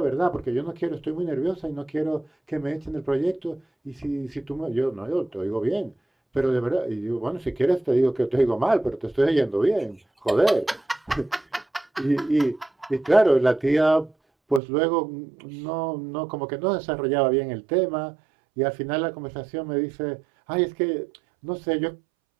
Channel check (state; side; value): drops out; left; at 14.6 s